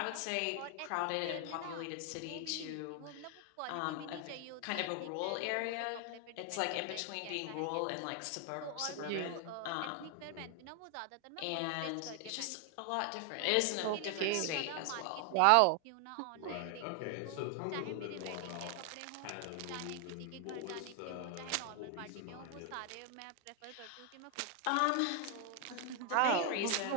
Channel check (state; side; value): different; both; correlation 0.00